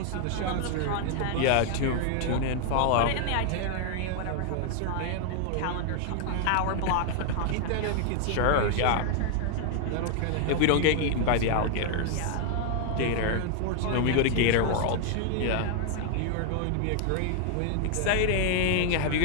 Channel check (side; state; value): both; different; correlation 0.00